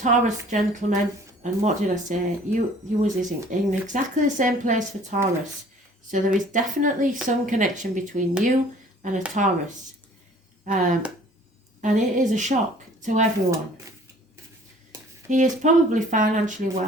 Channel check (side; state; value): both; normal; correlation 0.52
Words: gentleman, and what did I say? You was in exactly the same place for Taurus. So there is definitely some connection between you and a Taurus. And it is a shock to everyone. He is probably financially